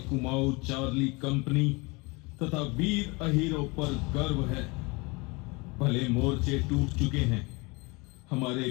कुमाऊं चार्ली कंपनी तथा वीर अहीरों पर गर्व है। भले मोर्चे टूट चुके हैं, हमारे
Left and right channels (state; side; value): quieter; right; 26.8 dB